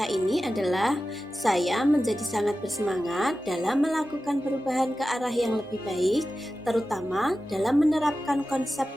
ini adalah saya menjadi sangat bersemangat dalam melakukan perubahan ke arah yang lebih baik, terutama dalam menerapkan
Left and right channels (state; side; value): normal; both; correlation 0.94